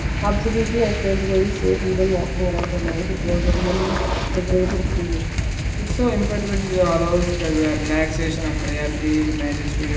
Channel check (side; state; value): both; identical; correlation 1.00